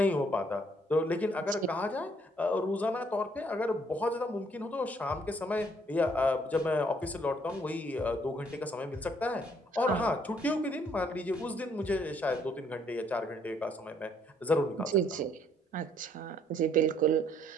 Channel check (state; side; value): normal; both; correlation 0.66